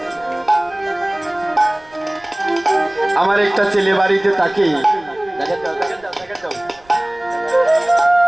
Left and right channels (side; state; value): right; noise; rumble, 28 dB below the sound